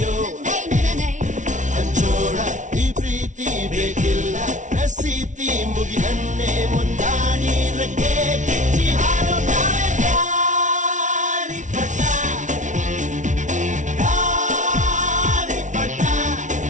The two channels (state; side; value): late; left; 0.36 ms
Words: ಹಂಚೋಣ ಈ ಪ್ರೀತಿ ಬೇಕಿಲ್ಲ ರಸೀತಿ ಮುಗಿದನ್ನೇ ಮುಂದಾಡಿ ರೆಕ್ಕೆ ಕಿಚ್ಚಿ ಹಾರೋಣ ಗಾಳಿಪಟ ಗಾಳಿಪಟ